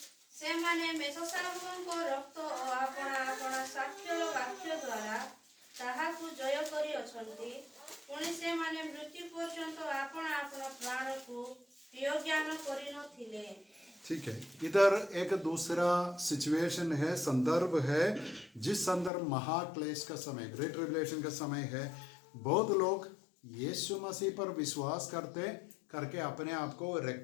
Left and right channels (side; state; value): right; drops out; at 19.1 s